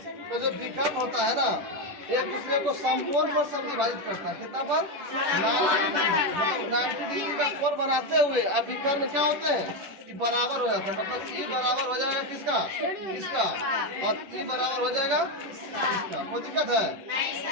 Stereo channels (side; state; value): left; late; 10 ms